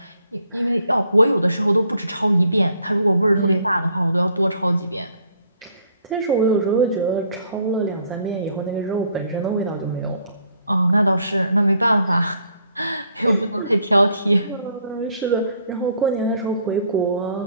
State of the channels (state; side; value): inverted; both; correlation -0.65